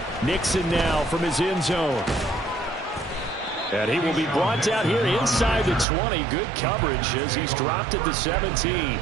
Nixon now from his end zone. And he will be brought down here inside the 20. Good coverage as he's dropped at the 17.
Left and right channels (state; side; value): drops out; left; at 5.9 s